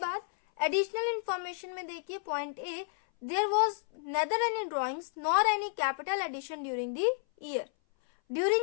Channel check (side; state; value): right; silent; 57 dB below the other